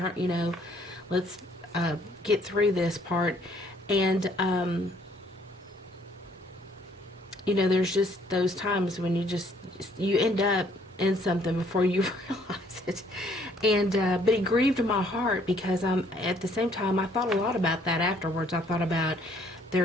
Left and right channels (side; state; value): both; normal; correlation 0.63